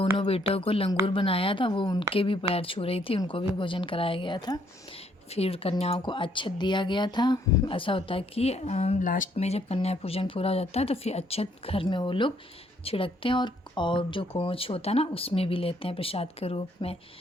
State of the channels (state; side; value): normal; both; correlation 0.68